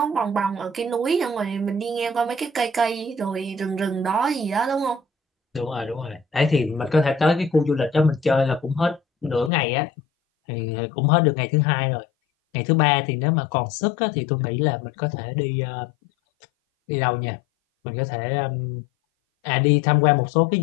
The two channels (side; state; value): right; drops out; at 9.5 s